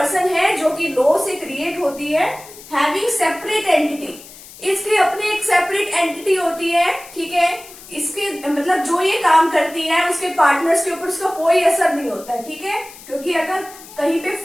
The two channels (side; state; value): left; noise; hiss, 18 dB below the sound